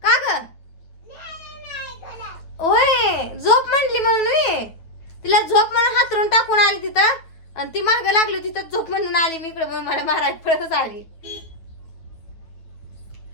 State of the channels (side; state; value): right; late; 9.2 ms